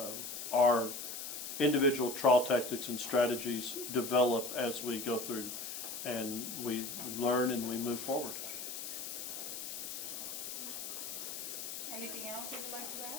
our individual trial tactics and strategies develop as we go through, and we learn and we move forward. Anything else you would like to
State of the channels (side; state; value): left; noise; hiss, 6 dB below the sound